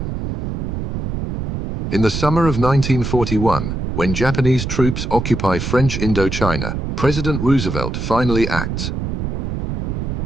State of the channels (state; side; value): noise; right; rumble, 3 dB below the sound